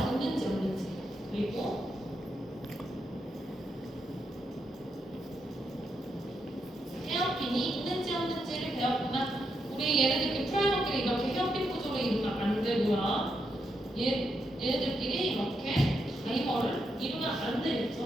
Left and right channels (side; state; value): both; normal; correlation 0.82